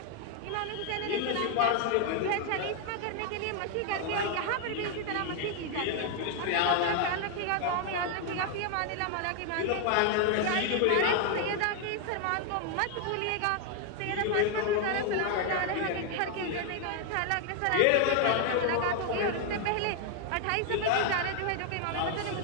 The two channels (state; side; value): different; both; correlation 0.00